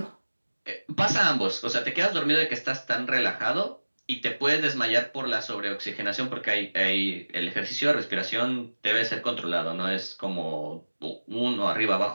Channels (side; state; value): both; inverted; correlation -1.00